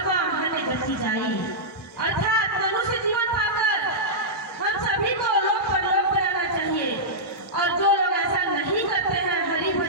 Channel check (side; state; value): both; normal; correlation -0.12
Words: हन गति जाई। अर्थात मनुष्य जीवन पाकर हम सभी को लोक परलोक में रहना चाहिए। और जो लोग ऐसा नहीं करते हैं, हरि